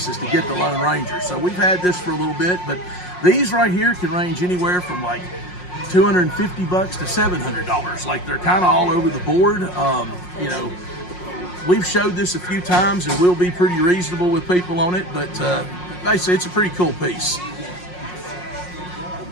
to get the Lone Ranger. So we've had this for a little bit, but these right here can range anywhere from like $250 to $700. Like, they're kind of all over the board. We've showed this a few times, and we'll be pretty reasonable with people on it, but basically it's a pretty cool piece.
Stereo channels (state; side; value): late; right; 5.5 ms